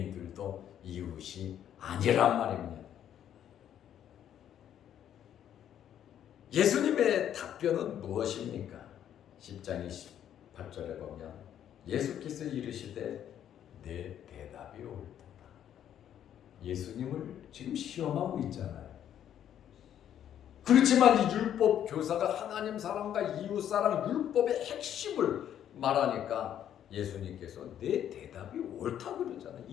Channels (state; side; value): quieter; right; 10.2 dB